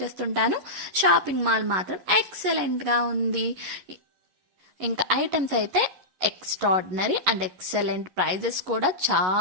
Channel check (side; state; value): left; late; 11 ms